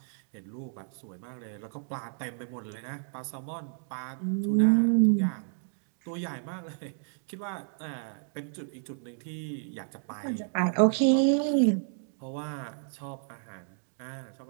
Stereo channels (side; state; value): left; silent; 57 dB below the other